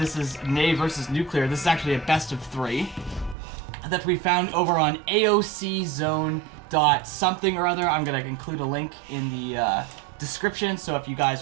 is NuCL3aR versus NuCL3aR. This is actually a best of 3 that we found over on AOCZone.something or other. I'm going to include a link in the description, so if you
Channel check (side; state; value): left; drops out; at 3.4 s